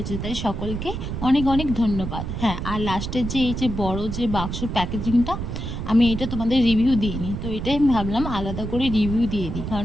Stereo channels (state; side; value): noise; right; rumble, 5 dB below the sound